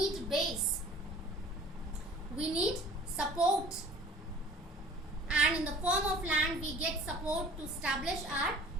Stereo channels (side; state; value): both; normal; correlation 0.48